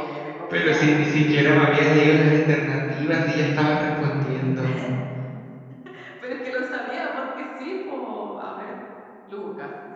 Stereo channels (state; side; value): identical; both; correlation 1.00